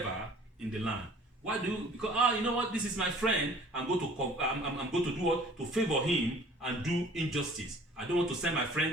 in the land. Why do you? Because you know what? This is my friend. I'm going to do what? To favor him and do injustice. I don't want to send my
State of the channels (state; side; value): normal; both; correlation 0.51